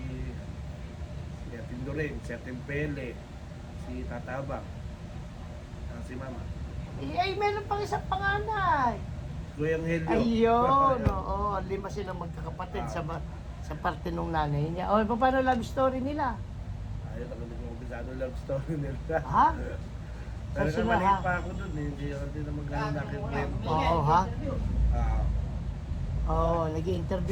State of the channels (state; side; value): identical; both; correlation 1.00